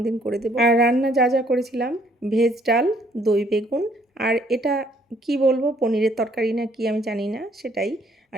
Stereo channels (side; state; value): both; normal; correlation 0.64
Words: দিন করে দেবো। আর রান্না যা যা করেছিলাম, ভেজ ডাল, দই বেগুন, আর এটা কি বলবো, পনিরের তরকারি না কি আমি জানি না, সেটাই